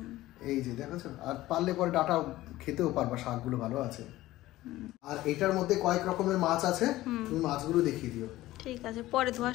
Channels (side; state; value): right; quieter; 16.4 dB